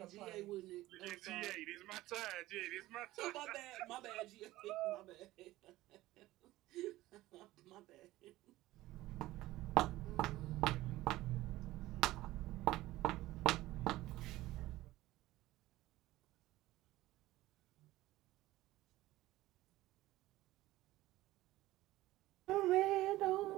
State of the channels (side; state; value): left; quieter; 16.9 dB